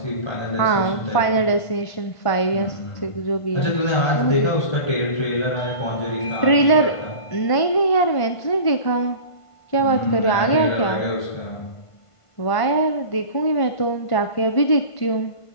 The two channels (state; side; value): late; right; 1.5 ms